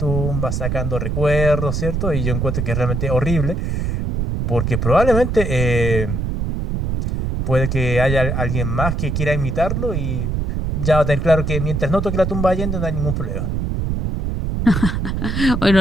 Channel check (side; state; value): right; noise; rumble, 1 dB below the sound